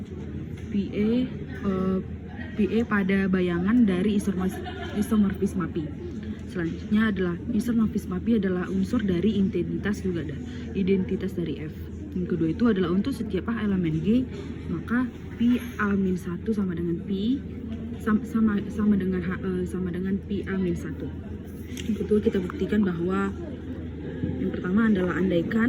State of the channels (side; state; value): both; identical; correlation 1.00